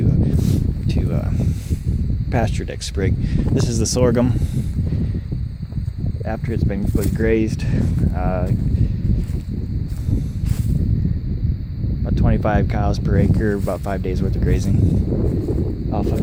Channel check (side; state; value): both; identical; correlation 1.00